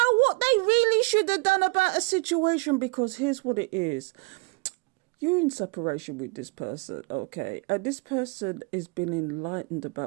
what they really should have done about a situation? Because here's what it is. You're in separation with this person, okay? And this person has been enlightened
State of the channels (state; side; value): quieter; left; 27.8 dB